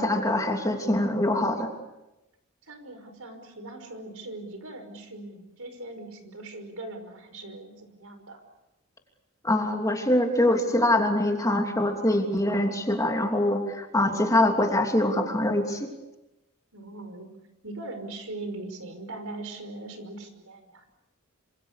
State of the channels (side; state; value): both; normal; correlation 0.62